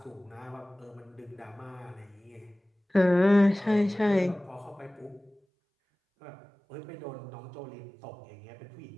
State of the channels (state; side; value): drops out; left; at 5.4 s